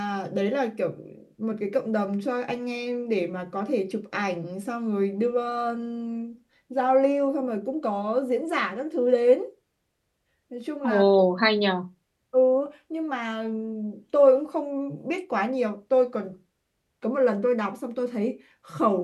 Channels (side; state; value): both; identical; correlation 1.00